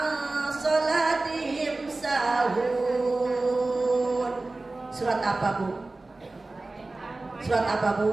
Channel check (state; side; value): quieter; left; 3.2 dB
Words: salatihim sahun. Surat apa Bu? Surat apa